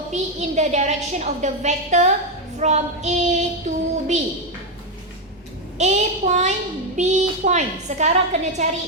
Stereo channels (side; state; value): both; normal; correlation 0.05